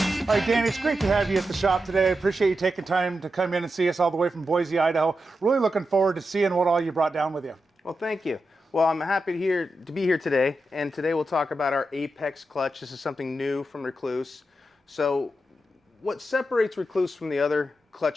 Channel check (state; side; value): normal; both; correlation 0.88